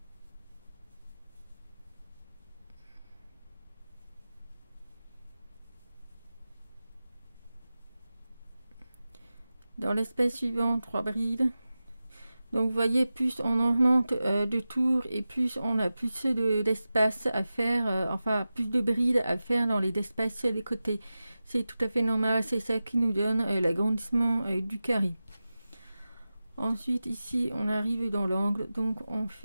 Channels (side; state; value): both; inverted; correlation -0.94